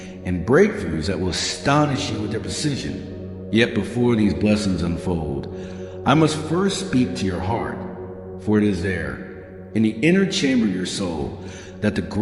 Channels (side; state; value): both; identical; correlation 1.00